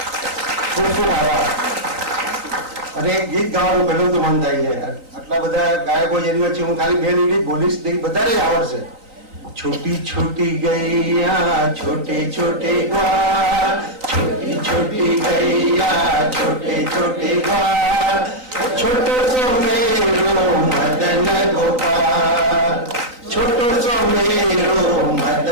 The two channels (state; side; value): late; left; 3.9 ms